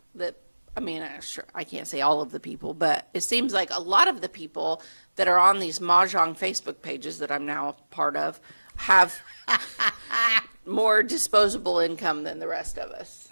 that, I mean, sure, I can't say all of the people, but it seems like a lot of the people that are on these Mahjong Facebook pages that I'm now a part of have more disposable income than the rest of us.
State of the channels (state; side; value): inverted; both; correlation -1.00